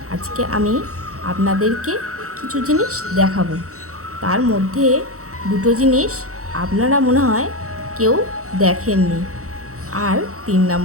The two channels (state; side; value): late; left; 0.65 ms